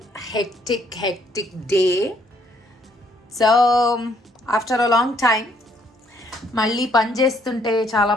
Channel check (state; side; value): normal; both; correlation 0.67